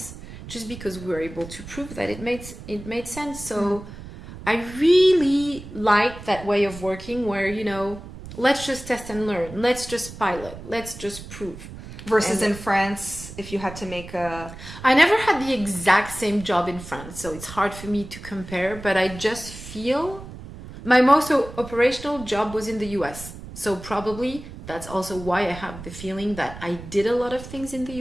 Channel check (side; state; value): right; noise; rumble, 14 dB below the sound